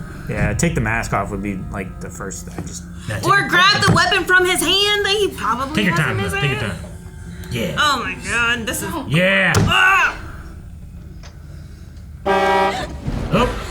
Yeah, take the mask off would be like the first. Or grab the weapon from his hand that he probably Take your has time, in his Liv, hand. take your time. Yeah. Oh my god, this is. Yeah. Ah!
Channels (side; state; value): both; identical; correlation 1.00